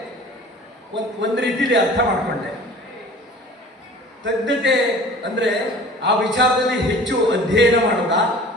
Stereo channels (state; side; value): normal; both; correlation 0.44